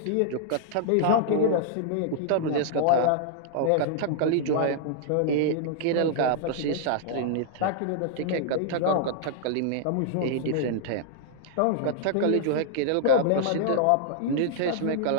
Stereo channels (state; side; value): different; both; correlation -0.01